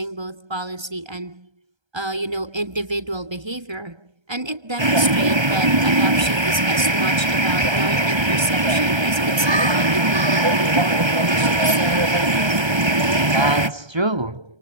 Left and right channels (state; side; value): late; left; 1.3 ms